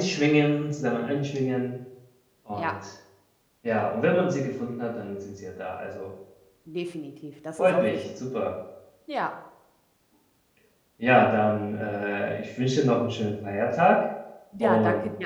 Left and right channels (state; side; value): identical; both; correlation 1.00